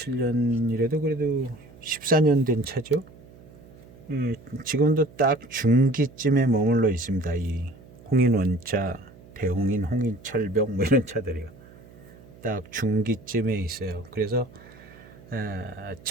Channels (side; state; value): right; noise; hum, 22 dB below the sound